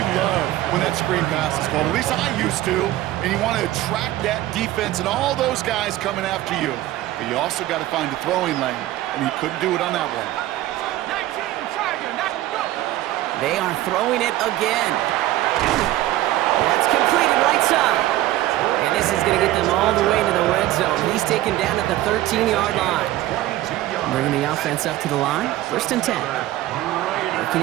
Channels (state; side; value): quieter; left; 15.3 dB